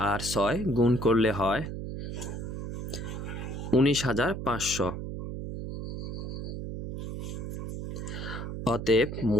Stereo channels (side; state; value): right; noise; hum, 6 dB below the sound